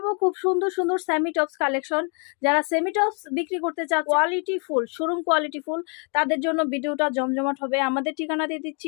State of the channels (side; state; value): right; quieter; 38.5 dB